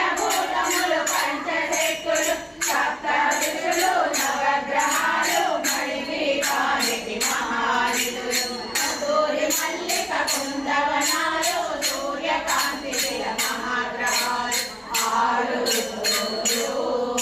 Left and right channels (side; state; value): both; identical; correlation 1.00